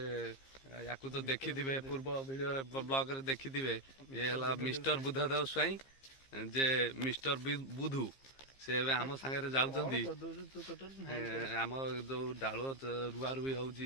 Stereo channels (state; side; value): late; right; 15 ms